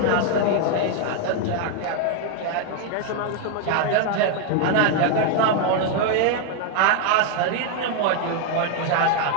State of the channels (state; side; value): different; both; correlation 0.00